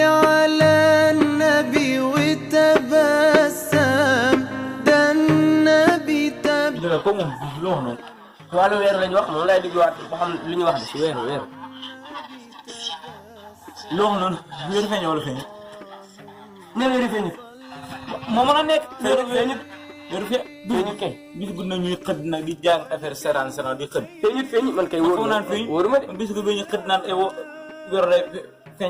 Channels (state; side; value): identical; both; correlation 1.00